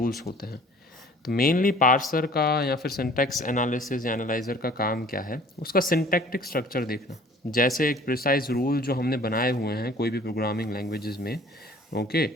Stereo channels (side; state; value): both; normal; correlation 0.50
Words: होते हैं। तो मेनली पार्सर का या फिर सिंटैक्स एनालिसिस या एनालाइजर का काम क्या है? उसका सिंटैक्टिक स्ट्रक्चर देखना। जैसे एक प्रिसाइज रूल जो हमने बनाए हुए हैं कोई भी प्रोग्रामिंग लैंग्वेजेस में, okay,